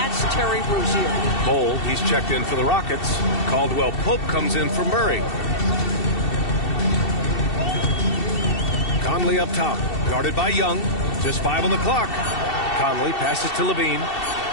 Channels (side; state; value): right; late; 2.7 ms